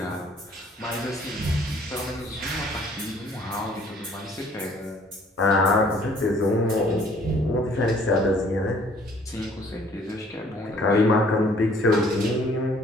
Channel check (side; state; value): both; normal; correlation 0.58